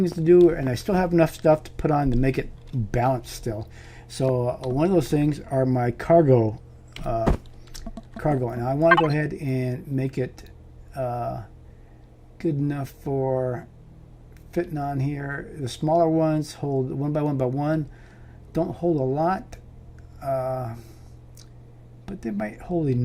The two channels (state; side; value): identical; both; correlation 1.00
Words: to do, and I still have enough stuff to put on to make it balanced still. So one of those things are my cargo, and I want to go ahead and make it good enough for fitting on here. The smaller ones hold one by one, don't hold a lot, but they might hold